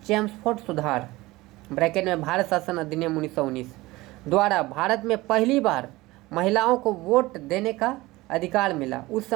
चैम्सफोर्ड सुधार ब्रैकेट में भारत शासन अधिनियम 1919 द्वारा भारत में पहली बार महिलाओं को वोट देने का अधिकार मिला। उस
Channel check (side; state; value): left; quieter; 19.9 dB